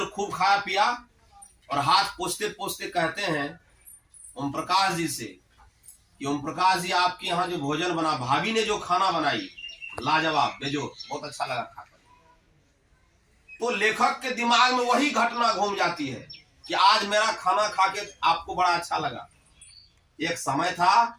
खूब खाया पिया, और हाथ पोछते पोछते कहते हैं ओम प्रकाश जी से कि ओम प्रकाश जी, आपके यहाँ जो भोजन बना, भाभी ने जो खाना बनाई, लाजवाब, बेजोड़, बहुत अच्छा लगा खाकर। तो लेखक के दिमाग में वही घटना घूम जाती है कि आज मेरा खाना खा के आपको बड़ा अच्छा लगा। एक समय था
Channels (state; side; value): identical; both; correlation 1.00